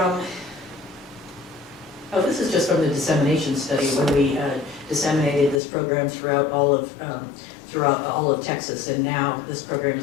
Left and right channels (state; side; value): drops out; right; at 5.6 s